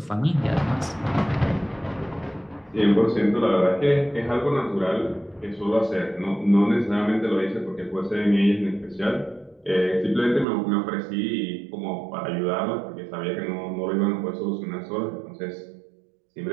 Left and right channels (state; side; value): drops out; left; at 10.5 s